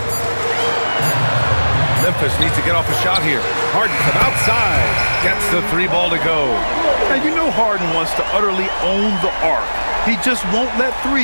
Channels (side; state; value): both; inverted; correlation -1.00